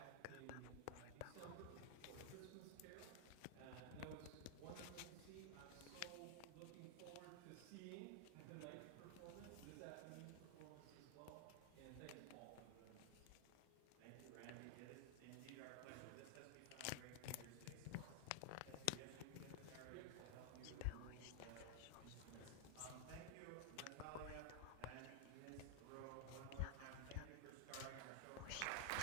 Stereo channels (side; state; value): both; different; correlation 0.00